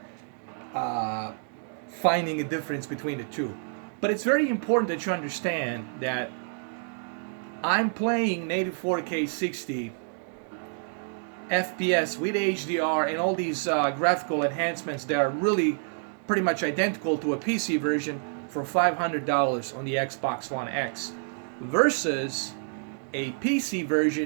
finding a difference between the two. But it's very important that you understand that I'm playing 84K 60 FPS with HDR and all these graphical enhancements that are really pretty much identical to a PC version for $500 on the Xbox One X versus a PC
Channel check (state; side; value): silent; left; 59 dB below the other